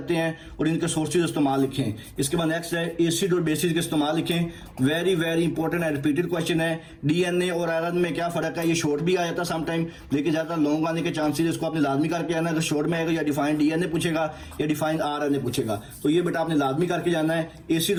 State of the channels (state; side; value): identical; both; correlation 1.00